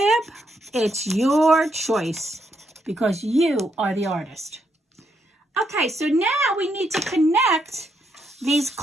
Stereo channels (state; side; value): normal; both; correlation 0.78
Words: it's your choice because you are the artist. Okay, so now we need to connect these